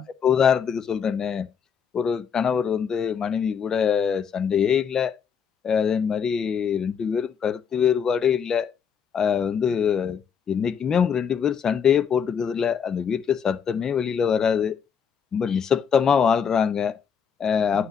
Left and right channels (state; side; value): quieter; right; 7.2 dB